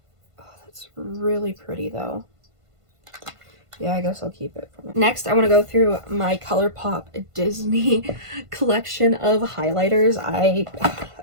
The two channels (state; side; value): late; left; 1.5 ms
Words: Oh, that's really pretty though. Yeah, I guess I'll keep it. Next, I want to go through my ColourPop Disney collection of highlighters. I